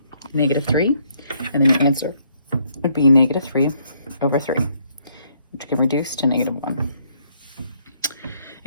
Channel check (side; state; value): both; inverted; correlation -0.70